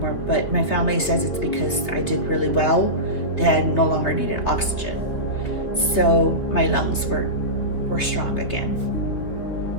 but my family says it's because I did really well. They had no longer needed oxygen. So my lungs were strong again.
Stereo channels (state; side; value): late; right; 3.4 ms